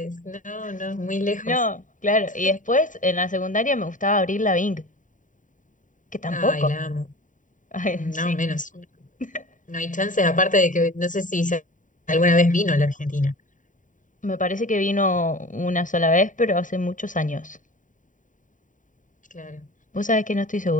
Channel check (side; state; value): right; late; 0.38 ms